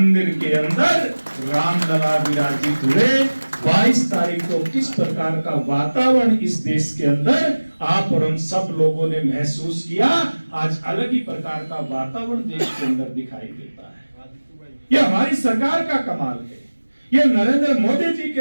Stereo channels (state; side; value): inverted; both; correlation -1.00